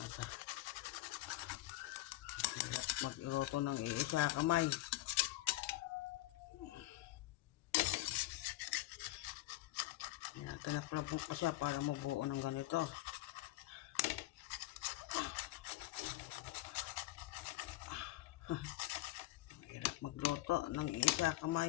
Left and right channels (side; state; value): right; quieter; 17.3 dB